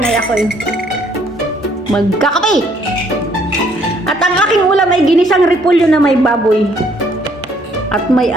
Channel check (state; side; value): normal; both; correlation 0.65